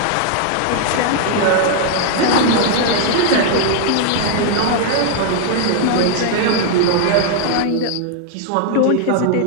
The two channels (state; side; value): different; both; correlation 0.00